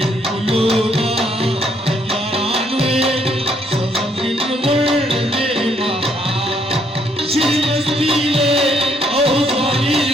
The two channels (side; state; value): both; normal; correlation 0.70